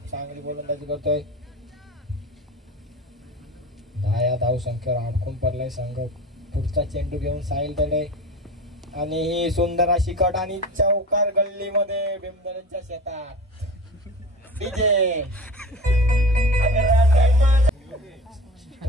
चांगली गोलंदाजी करतोय. 10 या धाव संख्येवर अडकून पडलाय संघ. पुढचा चेंडू घेऊन साहिल दरे, आणि ही सुंदर अशी कट, आणि चौकार गल्लीमध्ये भीमदरेच्या शेतात. डीजे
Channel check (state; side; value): normal; both; correlation 0.34